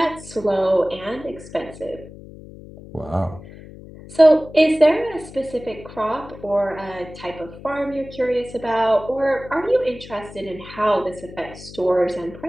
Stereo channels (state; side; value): noise; left; hum, 16 dB below the sound